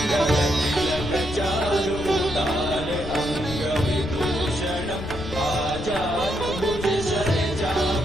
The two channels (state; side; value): noise; left; rumble, 9 dB below the sound